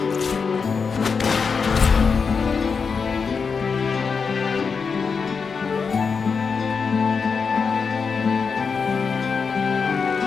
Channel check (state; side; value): quieter; right; 5.4 dB